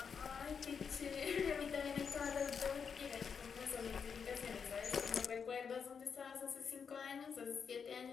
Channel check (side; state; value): right; quieter; 6.4 dB